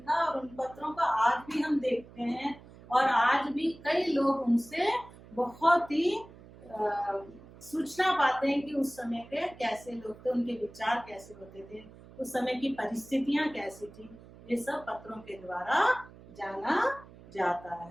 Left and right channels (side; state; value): right; noise; hum, 20 dB below the sound